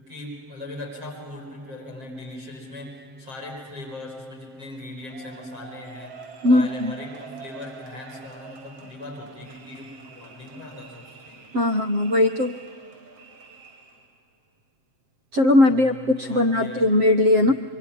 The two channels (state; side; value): late; left; 7.6 ms